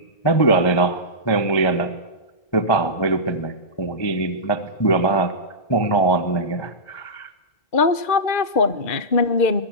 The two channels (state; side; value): late; right; 2.3 ms